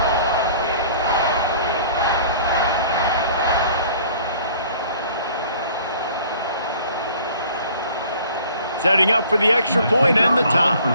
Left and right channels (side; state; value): both; inverted; correlation -0.51